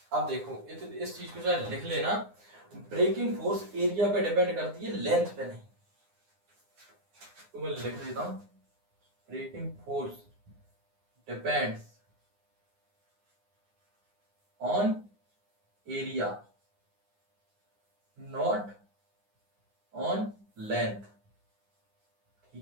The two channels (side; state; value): left; late; 9.7 ms